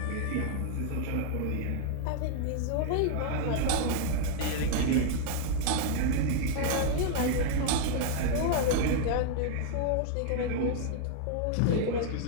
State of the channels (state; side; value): different; both; correlation 0.00